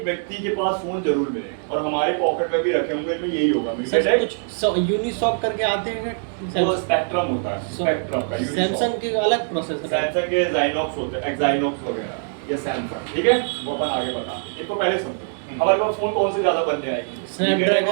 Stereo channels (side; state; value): left; silent; 64 dB below the other